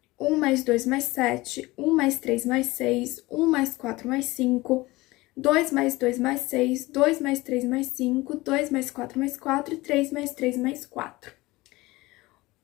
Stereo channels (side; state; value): right; quieter; 20.6 dB